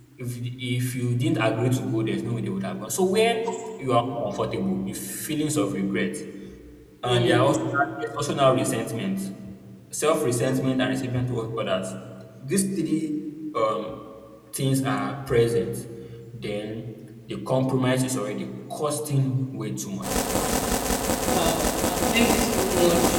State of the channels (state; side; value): identical; both; correlation 1.00